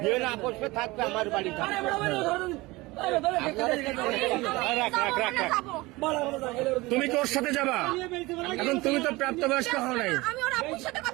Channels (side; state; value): left; quieter; 21.4 dB